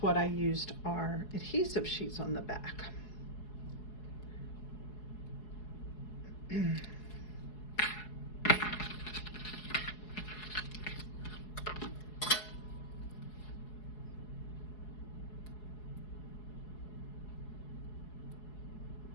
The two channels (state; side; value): late; right; 4.7 ms